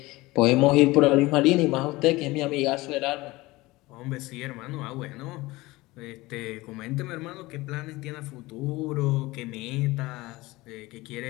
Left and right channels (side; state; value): right; quieter; 20.4 dB